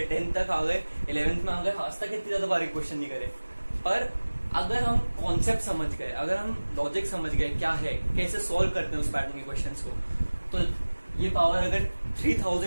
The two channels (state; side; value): inverted; both; correlation -1.00